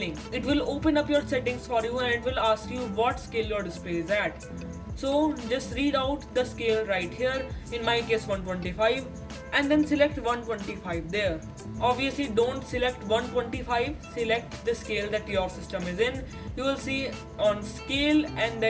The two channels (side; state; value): both; identical; correlation 1.00